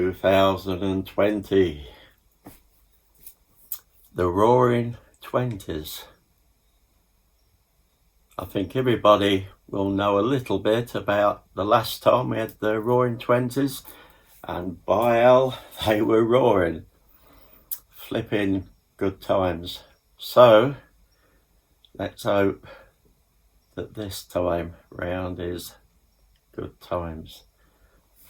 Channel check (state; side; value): identical; both; correlation 1.00